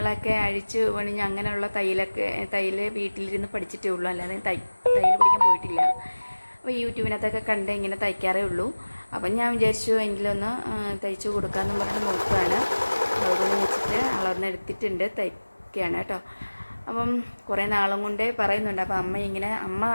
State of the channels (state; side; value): inverted; both; correlation -1.00